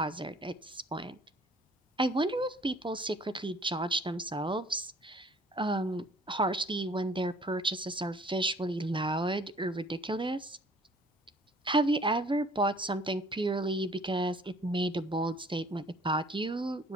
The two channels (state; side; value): normal; both; correlation 0.55